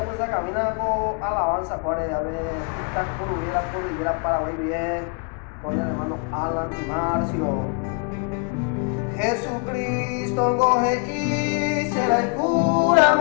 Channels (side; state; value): right; quieter; 37.1 dB